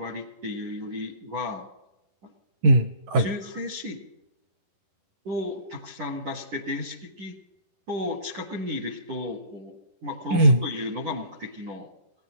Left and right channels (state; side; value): late; left; 11 ms